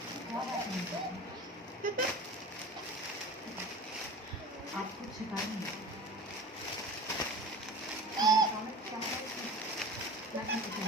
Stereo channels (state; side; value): normal; both; correlation 0.36